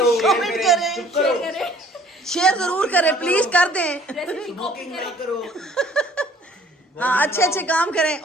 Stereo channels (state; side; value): normal; both; correlation 0.55